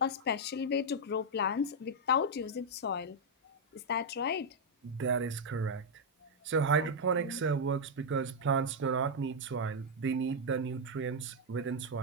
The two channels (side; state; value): both; normal; correlation -0.02